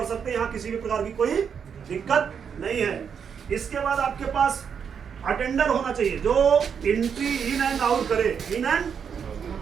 सकते हैं, यहाँ किसी भी प्रकार की कोई दिक्कत नहीं है। इसके बाद आपके पास अटेंडर होना चाहिए जो एंट्री इन एंड आउट करे, इन एंड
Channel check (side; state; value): left; quieter; 7.1 dB